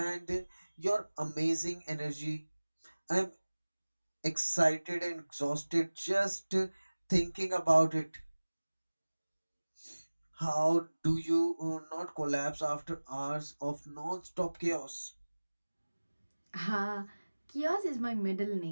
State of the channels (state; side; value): inverted; both; correlation -1.00